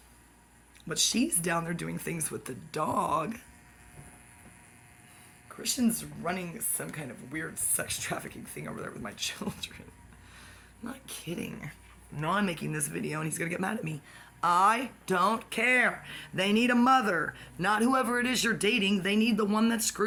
but she's down there doing things with the dog. Christian's running some kind of weird sex trafficking thing over there with my children. I'm not kidding. No, I'm making this video and he's gonna get mad at me. I don't care. They need a mother. Not whoever it is you're dating. They need the one that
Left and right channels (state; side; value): identical; both; correlation 1.00